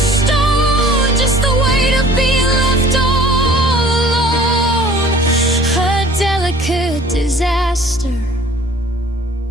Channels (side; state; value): both; normal; correlation 0.51